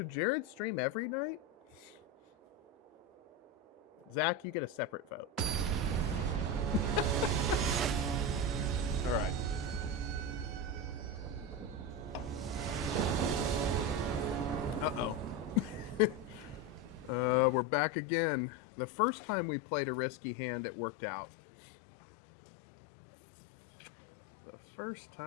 Jared stream every night? Zach, you get a separate vote. All right. Uh-oh. We're back again. The first time we played a risky hand, it worked out. The first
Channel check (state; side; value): drops out; right; at 17.7 s